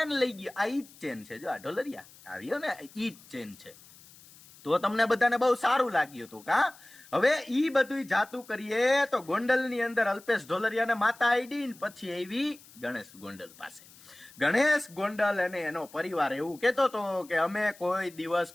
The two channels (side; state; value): left; noise; hiss, 23 dB below the sound